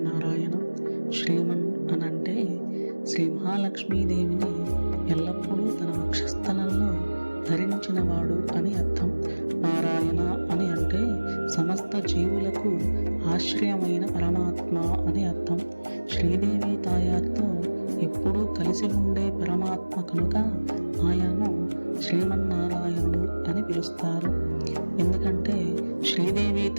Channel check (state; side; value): inverted; both; correlation -1.00